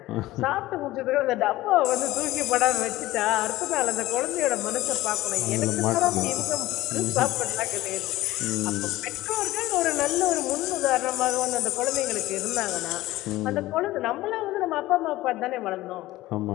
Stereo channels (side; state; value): right; quieter; 17.1 dB